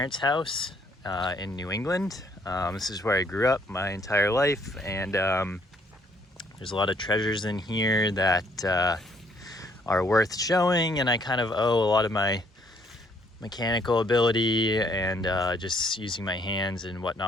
house in New England. This is where I grew up my entire life, and there's a lot of treasures in here that are worth showing, and I kind of owe a lot of my mechanical ability and just using my hands and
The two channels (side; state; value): both; normal; correlation 0.66